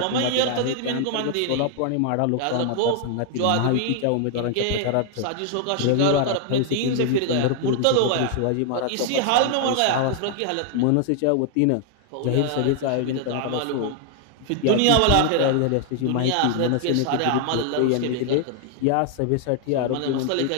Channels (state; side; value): different; both; correlation 0.00